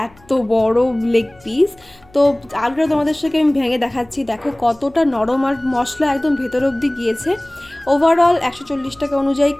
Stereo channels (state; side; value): noise; left; hum, 29 dB below the sound